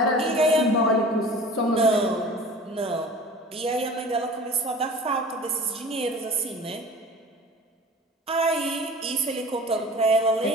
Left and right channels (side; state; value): both; normal; correlation 0.41